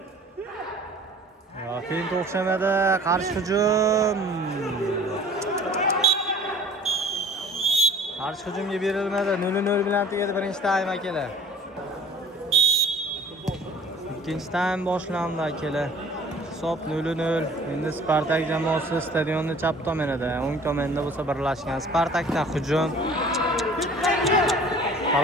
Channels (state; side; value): normal; both; correlation 0.48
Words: Fint o'xshamadi, qarshi hujum. Qarshi hujumga berilmadi. 0-0 bilan tugadi birinchi taym akalar. Ikkinchi taym boshlandi akalar. Hisob 0-0. Endi Spartak jamoasi stadionni chap tomonida, o'ng tomonda bo'lsa birlashgan. Spartakdan hujum.